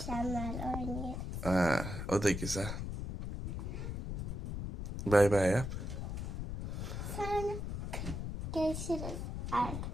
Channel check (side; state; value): left; noise; rumble, 4 dB below the sound